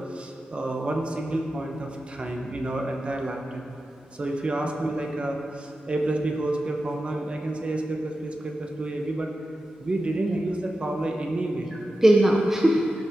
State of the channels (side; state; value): both; normal; correlation 0.92